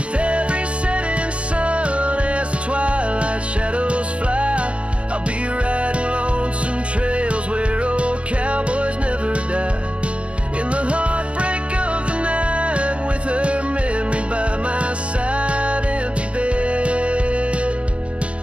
every setting sun as the twilight shadows fly, I'll be riding lonesome trails where old cowboys never die. In the heartbreak of the night, with her memory by my side, empty bed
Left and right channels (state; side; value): late; left; 0.060 ms